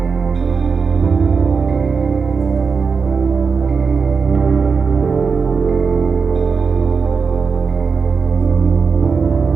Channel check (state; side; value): quieter; left; 5.3 dB